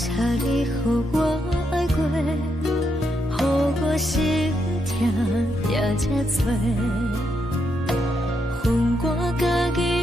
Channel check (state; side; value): normal; both; correlation 0.80